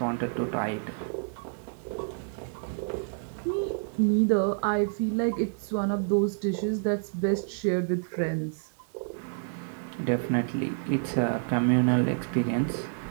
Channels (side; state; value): left; silent; 59 dB below the other